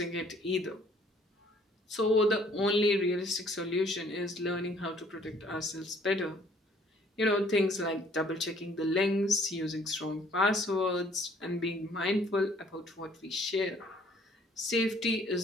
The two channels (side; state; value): both; normal; correlation 0.59